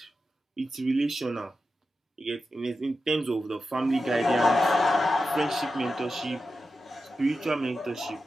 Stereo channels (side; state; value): both; normal; correlation 0.90